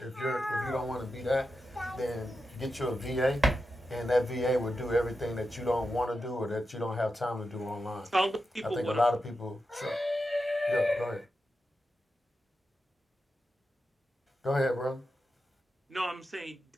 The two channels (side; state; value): both; normal; correlation 0.89